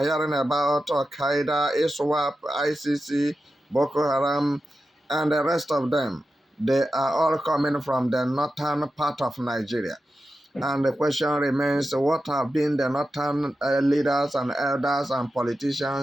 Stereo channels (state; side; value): normal; both; correlation 0.91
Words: hearing about, Al-Qaeda, ISWAP, ICC, Boko Haram, and the rest of them, they are all coming from the northern part of Nigeria. And the question remains, what have been the northern leaders and elders and